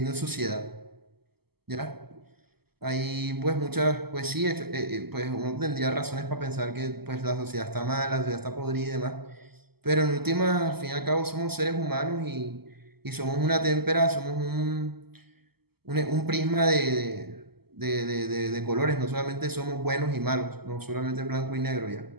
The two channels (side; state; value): left; late; 0.96 ms